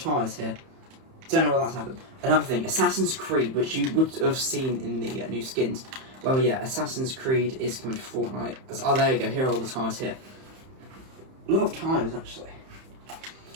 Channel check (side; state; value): left; late; 31 ms